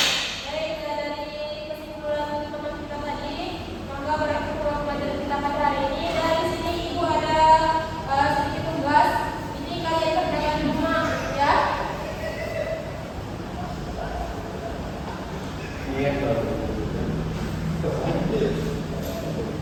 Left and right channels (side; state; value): both; identical; correlation 1.00